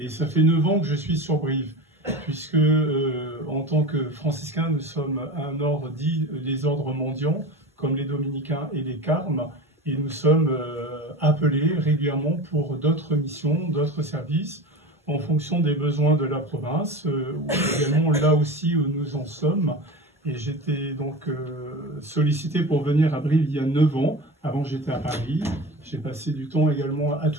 ça fait 9 ans que je suis sur Brive, puisque en tant que franciscain, nous sommes un ordre dit les ordres mendiants, comme les dominicains et les carmes. Et nous sommes appelés régulièrement pour d'autres missions, d'autres services, en fonction des besoins de la province, ou également là aussi où nous en sommes. Et j'étais donc sollicité pour venir à Brive il y a 9 ans. Avant, j'étais à Paris. J'ai passé du temps également à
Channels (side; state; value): both; normal; correlation 0.30